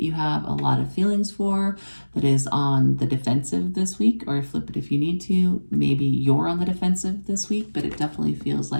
you have a lot of feelings for that is on the defensive this week, or flip it if you need to. Maybe you're on the defensive this week, but it definitely feels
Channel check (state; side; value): inverted; both; correlation -1.00